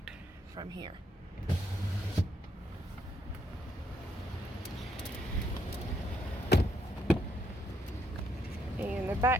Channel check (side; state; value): both; normal; correlation 0.74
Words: from here. And the